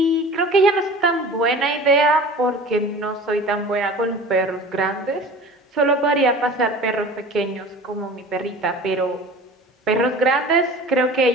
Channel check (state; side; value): normal; both; correlation 0.40